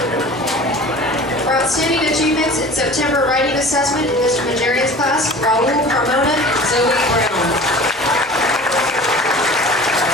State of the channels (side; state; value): both; normal; correlation 0.41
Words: For outstanding achievements in September writing assessment in Mr. Majerian's class, Raul Carmona and Zoe Brown.